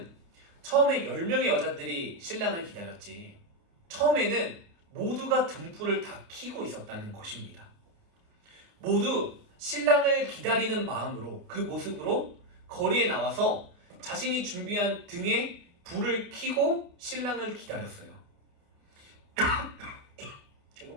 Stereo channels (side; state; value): left; late; 29 ms